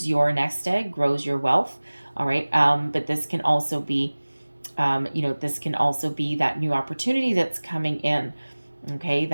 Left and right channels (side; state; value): both; inverted; correlation -1.00